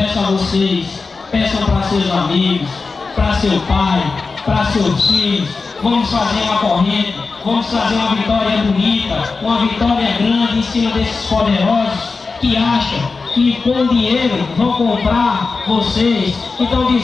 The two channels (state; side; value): quieter; right; 4.3 dB